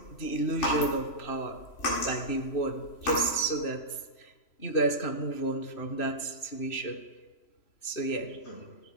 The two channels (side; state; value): right; late; 3.0 ms